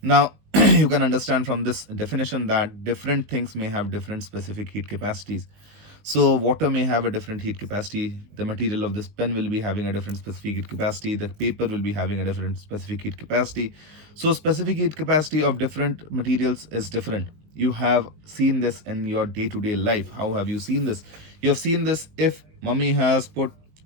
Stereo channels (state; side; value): late; left; 19 ms